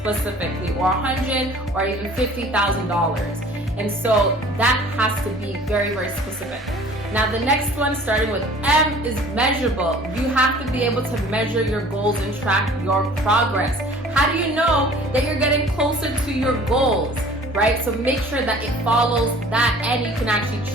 specifically, or 100, or even $50,000. And so that has to be very, very specific. Now the next one, starting with M, is measurable. You have to be able to measure your goals and track your progress. How do you know that you're getting closer to your goals, right? So make sure that it follows that and you can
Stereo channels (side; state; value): both; normal; correlation 0.49